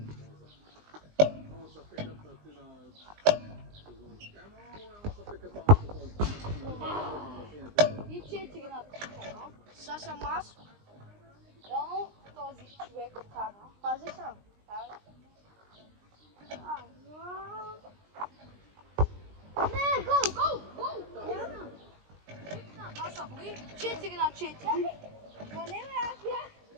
И 4 на такова. Сега съм аз. Реално този човек кара. Пази съм. Не, гол, гол, гол! Няма. Това са били 4 на 4. Ма не, бе, аз бях.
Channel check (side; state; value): left; late; 20 ms